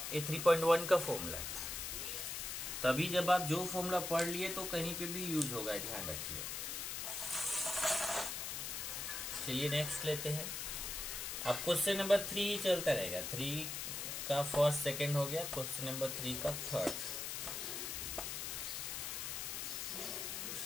ये 3.1 का फॉर्मूला है, तभी जब आप जो फॉर्मूला पढ़ लिए तो कहीं पे भी यूज होगा, ध्यान रखिए। चलिए नेक्स्ट लेते हैं। अब क्वेश्चन नंबर 3 चलता रहेगा, 3 का फर्स्ट सेकंड हो गया, क्वेश्चन नंबर 3 का थर्ड।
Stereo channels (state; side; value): noise; left; hiss, 4 dB below the sound